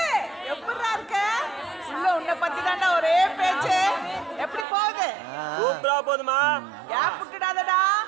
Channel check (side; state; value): left; drops out; at 4.7 s